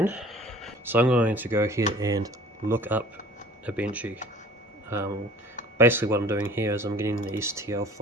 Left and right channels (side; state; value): both; normal; correlation 0.47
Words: So I'm going to go here and look up a benchy. Basically what I'm doing here is I'm getting the STL